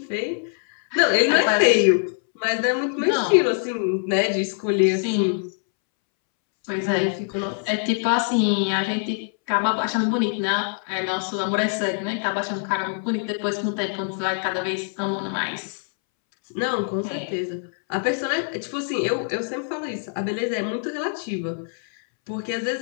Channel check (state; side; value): silent; right; 63 dB below the other